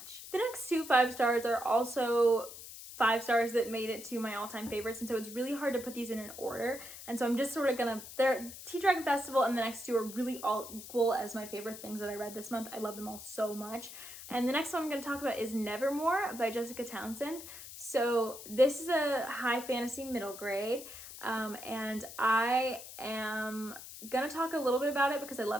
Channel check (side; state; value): left; noise; hiss, 13 dB below the sound